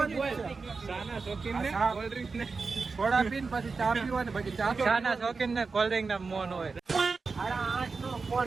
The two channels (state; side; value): quieter; left; 4.5 dB